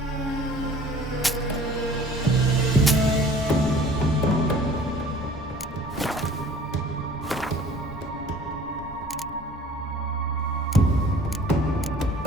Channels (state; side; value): normal; both; correlation 0.49